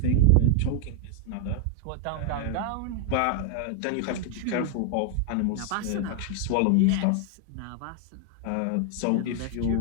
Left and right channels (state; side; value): different; both; correlation 0.00